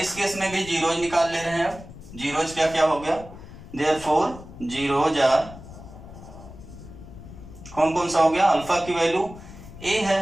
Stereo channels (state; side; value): noise; left; rumble, 15 dB below the sound